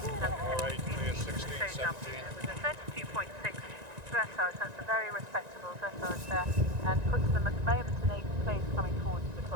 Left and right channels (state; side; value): late; left; 1.9 ms